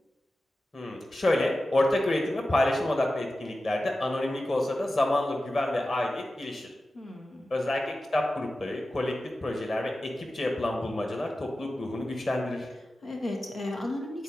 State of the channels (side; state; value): both; normal; correlation 0.94